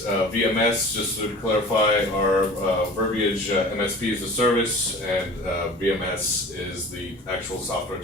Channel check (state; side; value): normal; both; correlation 0.41